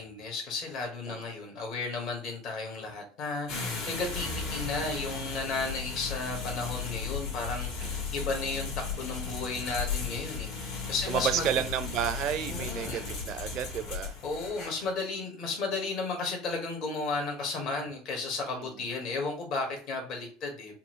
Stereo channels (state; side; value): normal; both; correlation 0.36